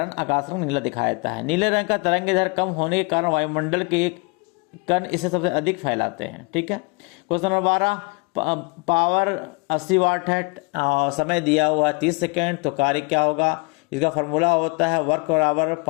आकाश रंग नीला दिखाई देता है। नीले रंग का तरंगदैर्घ्य कम होने के कारण वायुमंडल के कण इसे सबसे अधिक फैलाते हैं, ठीक है। क्वेश्चन नंबर 12, पावर 80 वाट है, समय दिया हुआ है 30 सेकेंड, तो कार्य क्या होगा? इसका फॉर्मूला होता है वर्क बराबर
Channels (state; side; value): quieter; right; 29.8 dB